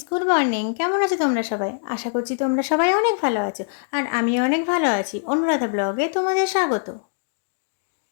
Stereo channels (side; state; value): right; silent; digital silence